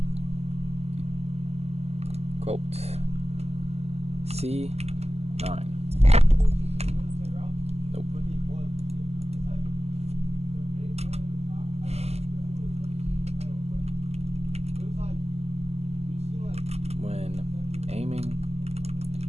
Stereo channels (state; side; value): late; left; 0.30 ms